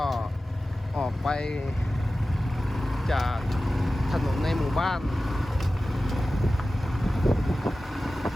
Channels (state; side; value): normal; both; correlation 0.95